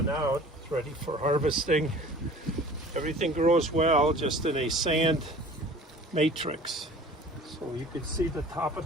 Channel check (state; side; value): normal; both; correlation 0.45